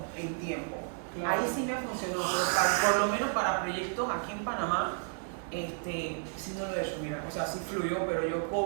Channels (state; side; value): silent; left; 56 dB below the other